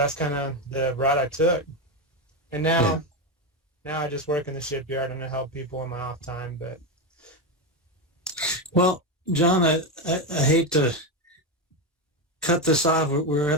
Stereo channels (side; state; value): both; normal; correlation 0.11